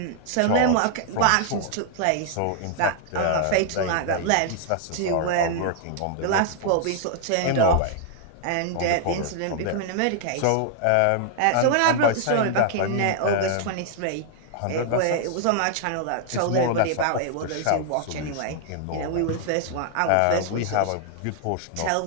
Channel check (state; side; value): different; both; correlation -0.01